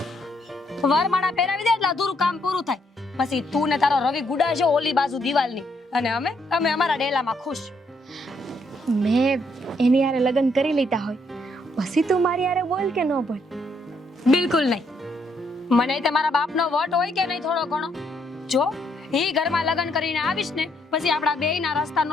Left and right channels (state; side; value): normal; both; correlation 0.73